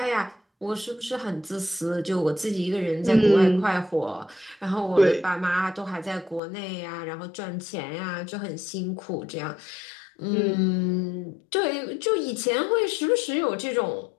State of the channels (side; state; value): right; drops out; at 6.4 s